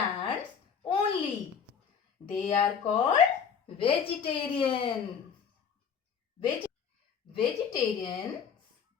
only. They are called vegetarian. Vegetarians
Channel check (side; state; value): right; quieter; 7.0 dB